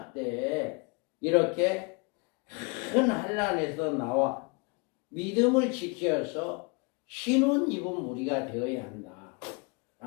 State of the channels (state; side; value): quieter; right; 30.7 dB